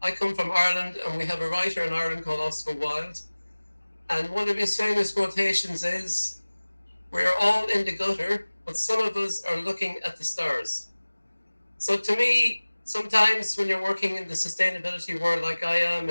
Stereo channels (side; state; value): both; inverted; correlation -1.00